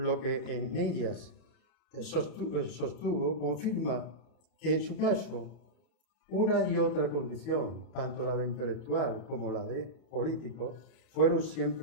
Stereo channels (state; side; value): late; right; 31 ms